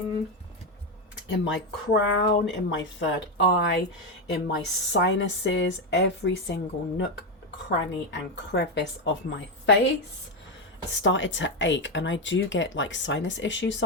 in my crown, in my third eye, in my sinuses, every single nook, cranny, and crevice of my face started to ache. And I do get like sinus issues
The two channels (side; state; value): both; normal; correlation 0.09